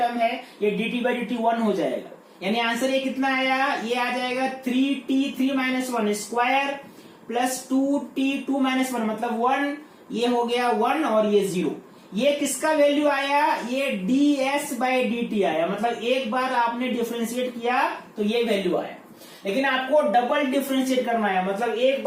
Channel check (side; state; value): both; identical; correlation 1.00